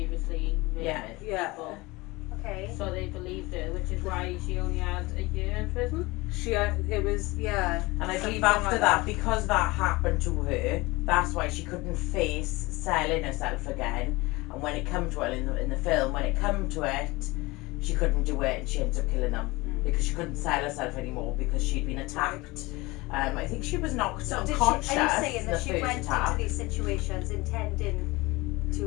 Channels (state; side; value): quieter; right; 22.3 dB